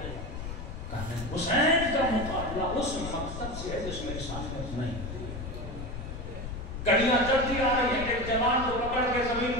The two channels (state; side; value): noise; left; rumble, 7 dB below the sound